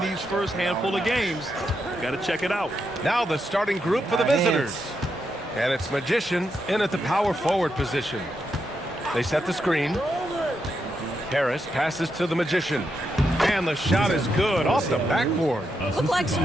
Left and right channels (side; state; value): both; normal; correlation 0.83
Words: these first handful of games. Got to check it out. Now the starting group for the visitors. And it's Magician in at the power forward position. They set the screen. Harris passes to the Magician. And the shot is good off the backboard. Looked like some